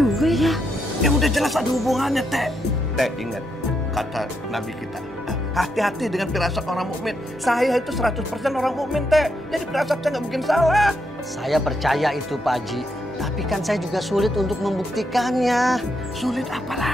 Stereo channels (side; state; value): both; normal; correlation 0.80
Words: ya. Ya udah jelas ada hubungannya, Teh. Teh, ingat kata Nabi kita. Hati-hati dengan firasat orang mukmin. Saya itu 100% orang mukmin, Teh. Jadi firasat saya nggak mungkin salah. Saya percaya itu, Pak Haji. Tapi kan saya juga sulit untuk membuktikannya. Sulit apa